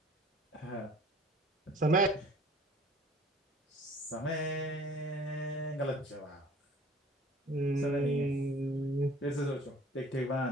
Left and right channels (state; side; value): normal; both; correlation 0.51